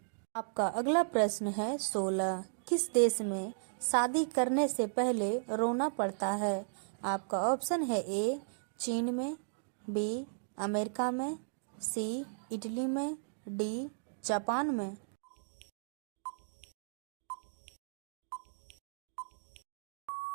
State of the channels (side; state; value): left; silent; digital silence